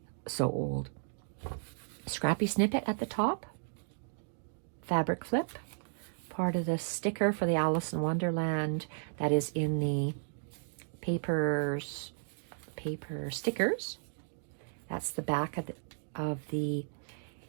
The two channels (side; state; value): left; silent; digital silence